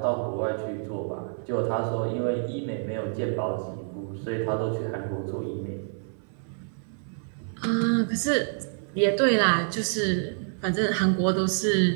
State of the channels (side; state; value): left; silent; 60 dB below the other